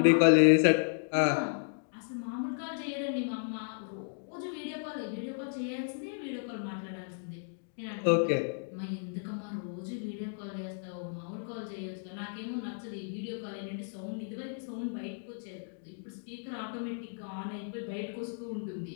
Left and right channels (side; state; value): right; silent; digital silence